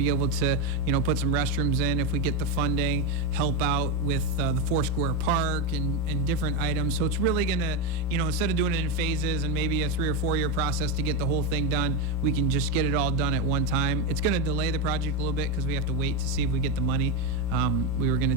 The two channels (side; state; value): both; normal; correlation 0.09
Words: able to, you know, put some restrooms in if we get the funding, help out with the Foursquare Park and different items. So it's really going to, you know, instead of doing it in phases and maybe a 3 or 4 year process to get the whole thing done, we can just get it all done at one time. It's going to delay the project a little bit because we have to wait to see if we get the money. We were going to